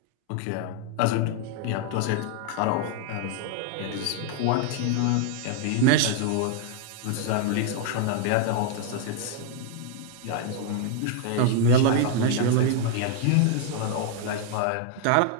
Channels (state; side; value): different; both; correlation 0.00